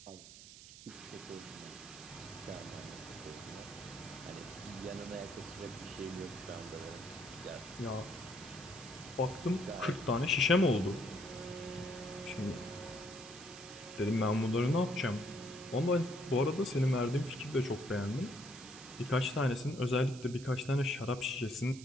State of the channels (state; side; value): noise; right; hiss, 16 dB below the sound